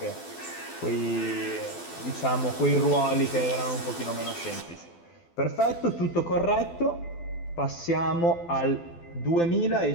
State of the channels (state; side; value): late; right; 12 ms